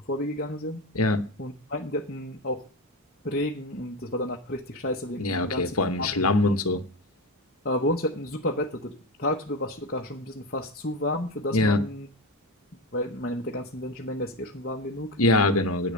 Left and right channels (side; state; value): both; normal; correlation 0.19